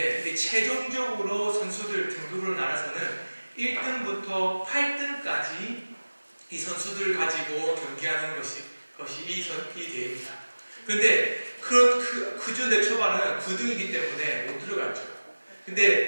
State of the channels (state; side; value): inverted; both; correlation -1.00